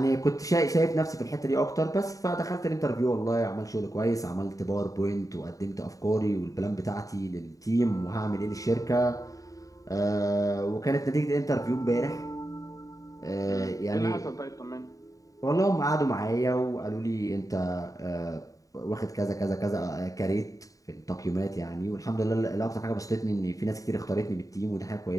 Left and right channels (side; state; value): right; late; 0.16 ms